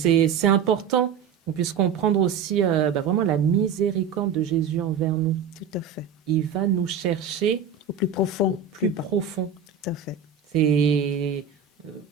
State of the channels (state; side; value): quieter; left; 6.7 dB